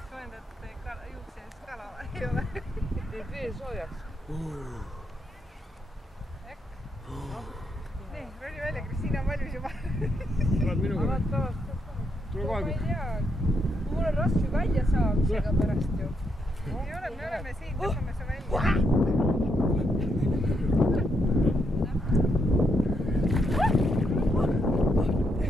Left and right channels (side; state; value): both; normal; correlation 0.78